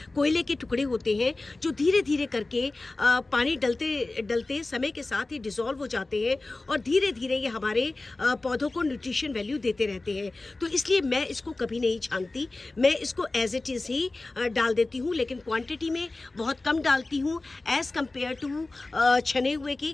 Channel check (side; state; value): right; quieter; 3.2 dB